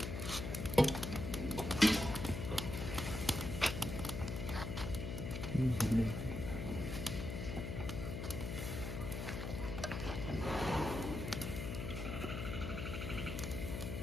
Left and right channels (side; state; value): left; noise; hum, 4 dB below the sound